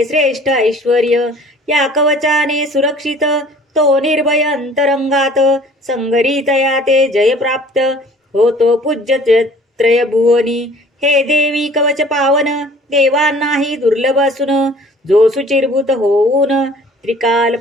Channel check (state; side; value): normal; both; correlation 0.51